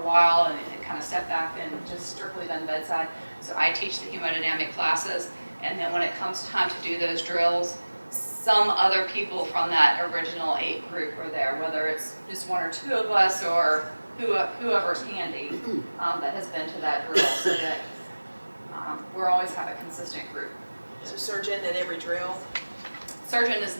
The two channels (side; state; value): both; inverted; correlation -1.00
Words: while and kind of stepped back and just strictly done bedside. So I teach the hemodynamic classes, and then when it comes time to do those drills, some other people from that original 8 group are there, whether it's just 1 or 2 of us or whoever's handy that has been to that drill, so that we'll always have a consistent group. So surgeon at every drill? Surgeon is